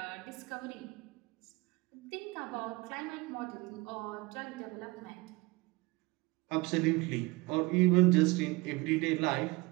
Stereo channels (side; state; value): left; quieter; 24.2 dB